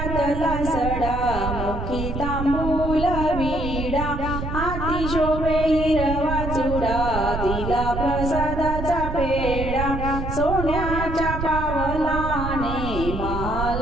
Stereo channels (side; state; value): right; noise; rumble, 4 dB below the sound